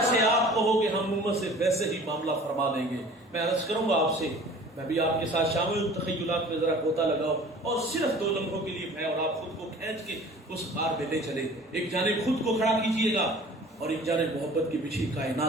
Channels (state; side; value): normal; both; correlation 0.46